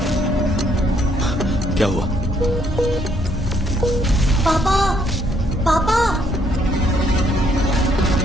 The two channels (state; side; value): normal; both; correlation 0.70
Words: क्या हुआ? पापा पापा।